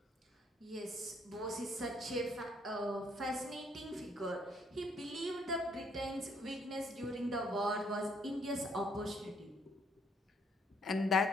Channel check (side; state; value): both; normal; correlation 0.68